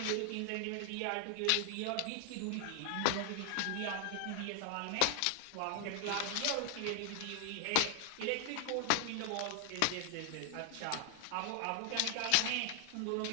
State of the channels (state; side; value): different; both; correlation 0.00